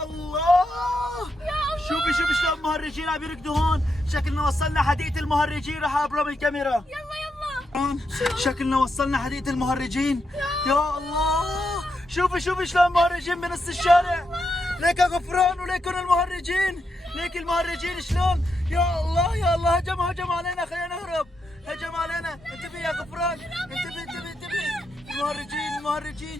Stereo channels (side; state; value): both; normal; correlation 0.83